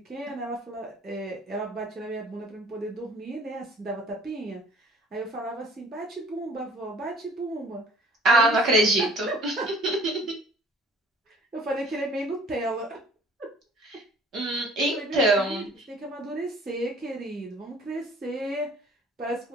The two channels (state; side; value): normal; both; correlation 0.53